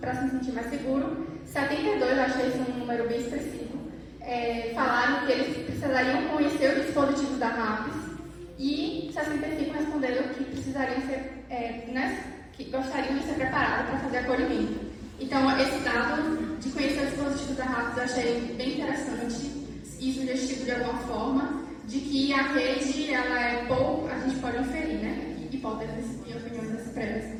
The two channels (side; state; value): both; identical; correlation 1.00